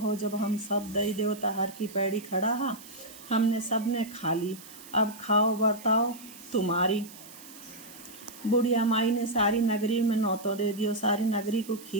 जब हम सब दई देवता हर की पैड़ी खड़ा हा, हमने सब ने खा ली, अब खाओ बर्ताओ तुम्हारी। बुढ़िया माई ने सारी नगरी में न्योतों दे दियो, सारी नगरी को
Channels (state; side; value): noise; right; hiss, 18 dB below the sound